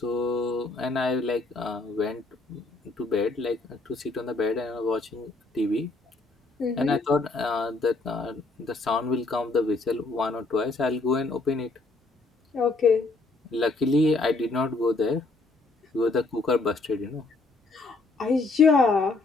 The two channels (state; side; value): quieter; right; 3.4 dB